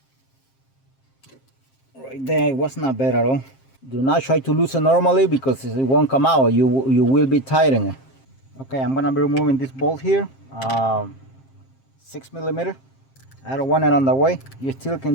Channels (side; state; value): right; late; 7.5 ms